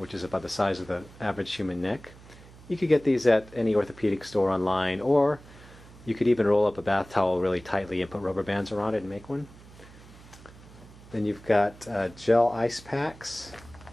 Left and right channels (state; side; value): noise; right; hum, 21 dB below the sound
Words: is about the size of the average human neck. You could get these at any orthopedic store online, or you could even roll up a bath towel really tightly and put rubber bands around it and make one. Then you've got gel ice packs,